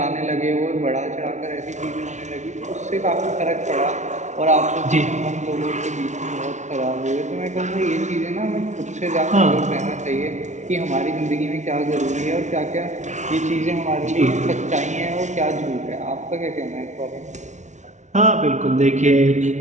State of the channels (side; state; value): left; late; 0.34 ms